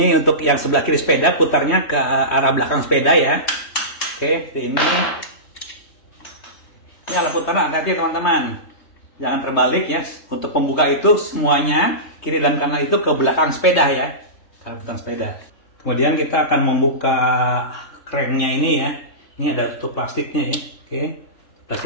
untuk yang sebelah kiri sepeda, putarnya ke arah belakang sepeda ya. Oke, ini. Ini alat putaran hati-hati teman-teman. Jangan terbalik ya. Untuk pembuka itu semuanya kiri dan kanan itu ke belakang sepeda ya. Ke belakang sepeda. Kemudian kita akan membuka cranknya ini ya. Ini ada tutup plastiknya ya. Oke.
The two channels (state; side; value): late; right; 3.2 ms